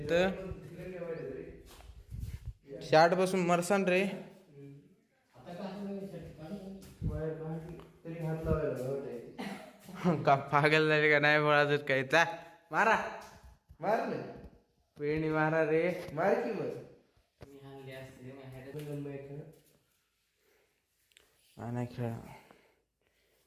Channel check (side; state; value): both; identical; correlation 1.00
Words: शार्ट बसून मरसान रे. का पागल झाले का नाही बोलायचं काय. चा मारा मारले पेणी मारा रे. मार की बस. नाही खेळा,